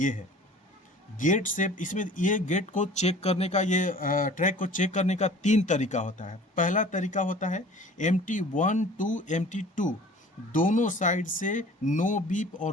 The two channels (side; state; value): both; normal; correlation 0.46